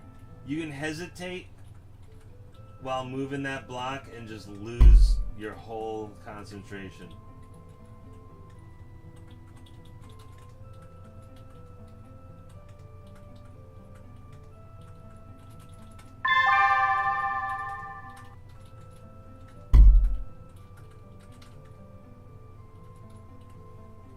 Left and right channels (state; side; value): identical; both; correlation 1.00